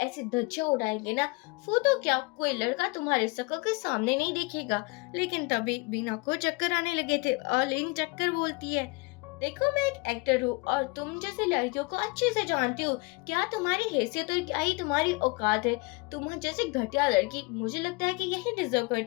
ऐसे धज्जियां उड़ाएंगे ना, वो तो क्या कोई लड़का तुम्हारे शक्ल के सामने नहीं देखेगा। लेकिन तभी बीना को चक्कर आने लगे थे और लिन चक्कर बोलती है देखो मैं एक एक्टर हूँ और तुम जैसी लड़कियों को अच्छे से जानती हूँ, क्या तुम्हारी हैसियत और क्या ही तुम्हारी औकात है, तुम जैसी घटिया लड़की मुझे लगता है कि यही डिजर्व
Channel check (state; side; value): quieter; right; 26.5 dB